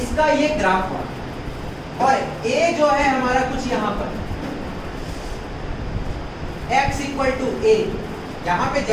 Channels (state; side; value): identical; both; correlation 1.00